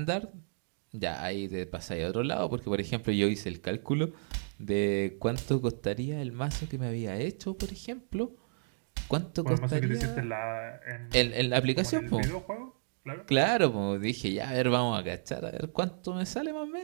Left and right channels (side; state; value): left; silent; digital silence